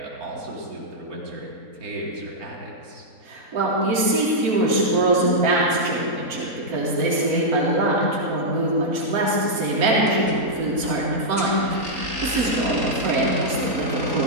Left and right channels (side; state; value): left; late; 4.5 ms